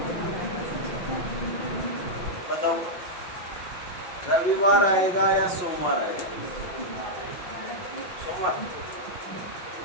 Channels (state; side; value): late; right; 5.6 ms